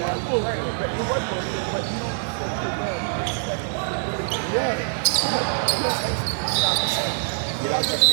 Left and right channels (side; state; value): left; silent; digital silence